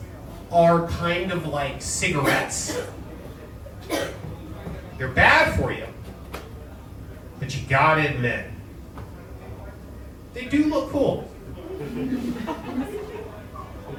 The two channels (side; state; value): both; identical; correlation 1.00